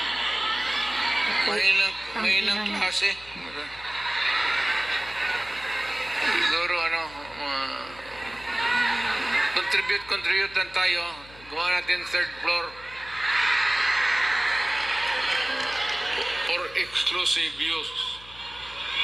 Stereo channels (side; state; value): left; noise; hum, 21 dB below the sound